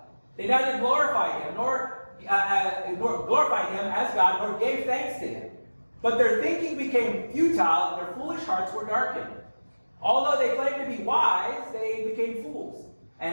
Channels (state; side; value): inverted; both; correlation -1.00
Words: they neither glorified Him, nor glorified Him as God, nor gave thanks to Him. But their thinking became futile, and their foolish hearts were darkened. Although they claimed to be wise, they became fools,